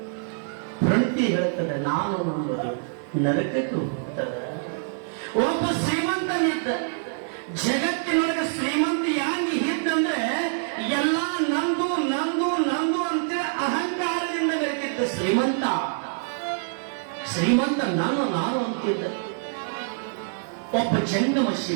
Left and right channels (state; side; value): silent; left; digital silence